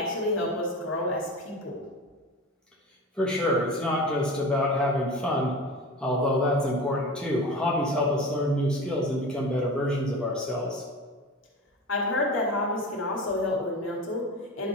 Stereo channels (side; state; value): both; normal; correlation 0.31